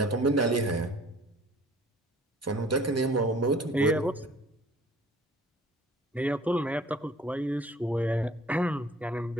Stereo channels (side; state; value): both; normal; correlation 0.51